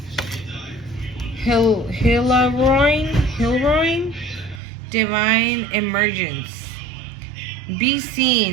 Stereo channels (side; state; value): left; drops out; at 4.6 s